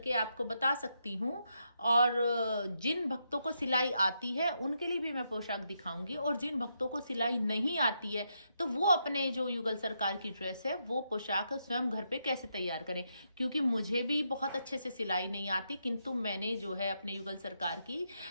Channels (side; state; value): both; inverted; correlation -0.81